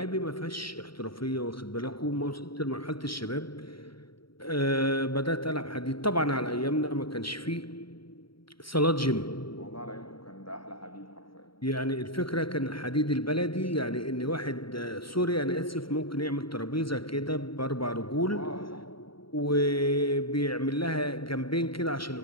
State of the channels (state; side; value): late; right; 0.74 ms